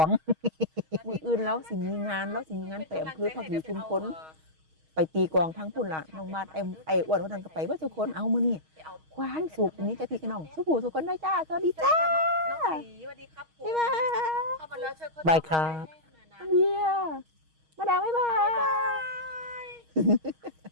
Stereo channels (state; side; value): late; left; 6.4 ms